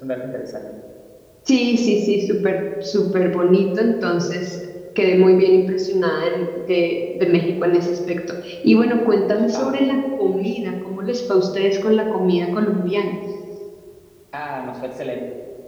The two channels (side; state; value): both; identical; correlation 1.00